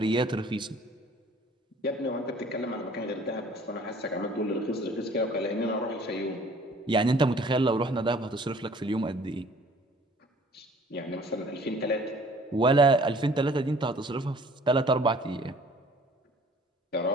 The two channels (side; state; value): both; normal; correlation 0.53